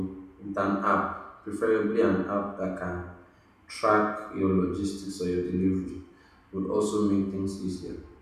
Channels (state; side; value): identical; both; correlation 1.00